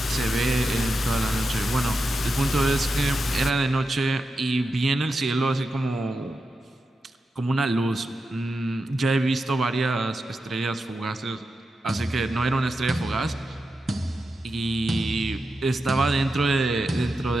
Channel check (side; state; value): both; normal; correlation 0.89